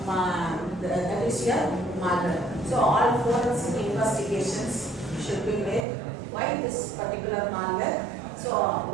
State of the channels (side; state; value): left; drops out; at 5.9 s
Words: malware. So all forensic investigations should be made. Why this particular malware? So